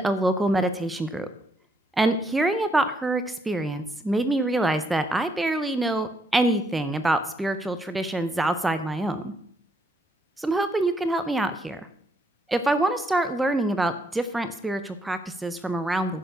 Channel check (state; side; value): normal; both; correlation 0.74